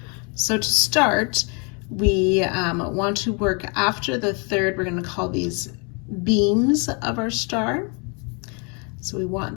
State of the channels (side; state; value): right; quieter; 35.1 dB